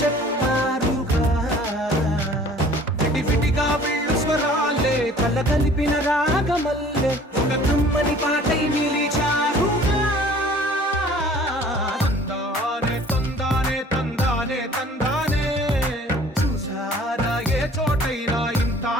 విడివిడిగా వీళ్ళు స్వరాలే కల కలిపిన రాగమల్లే ఒక కమ్మని పాటై నిలిచారుగా తందానే తందానే తందానే తందానే చూసారా ఏ చోటైనా ఇంత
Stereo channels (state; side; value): normal; both; correlation 0.51